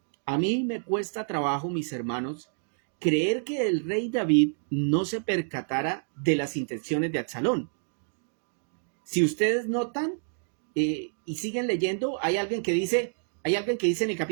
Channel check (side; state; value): left; silent; digital silence